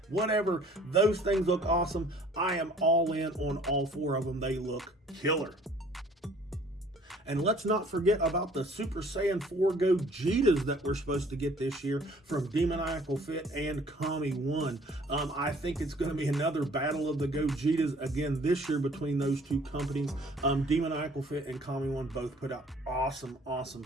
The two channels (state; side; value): normal; both; correlation 0.55